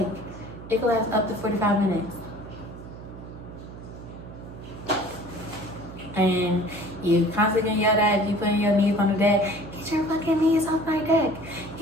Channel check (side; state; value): right; noise; hum, 14 dB below the sound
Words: could last up to 45 minutes. And you constantly yell at, you putting your knees on the deck, get your fucking knees off my deck.